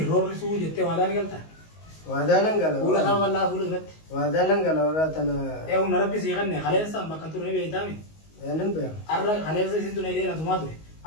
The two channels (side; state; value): right; late; 19 ms